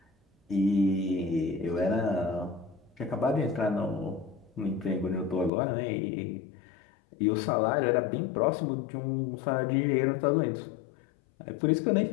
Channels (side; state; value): right; drops out; at 5.5 s